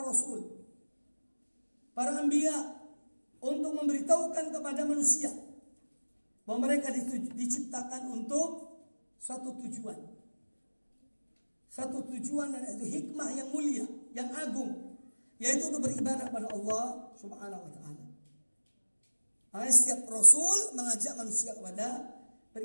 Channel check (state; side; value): inverted; both; correlation -1.00